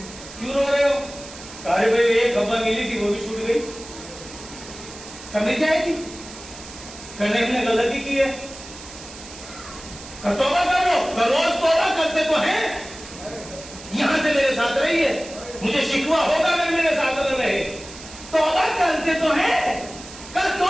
کیوں رو رہے ہو؟ ارے بھائی ایک ہوا ملی تھی وہ بھی چھوٹ گئی، کمی جائے گی؟ کرنے نے غلطی کی ہے، توبہ کرو، روز توبہ کرتے تو ہیں، یہاں سے میرے ساتھ رہیے، مجھے شکوہ ہوگا اگر میرے ساتھ نہ رہے، توبہ کرتے تو ہیں، کیوں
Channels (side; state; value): right; noise; hiss, 15 dB below the sound